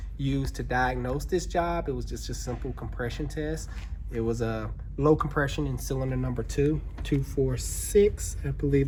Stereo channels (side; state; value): both; identical; correlation 1.00